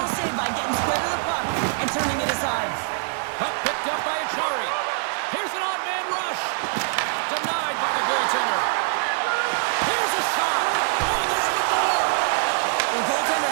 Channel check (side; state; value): left; silent; 63 dB below the other